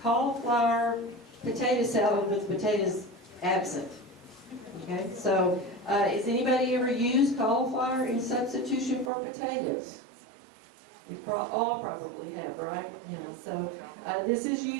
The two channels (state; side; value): drops out; left; at 9.1 s